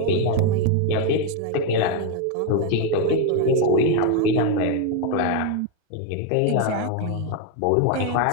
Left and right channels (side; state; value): both; different; correlation 0.02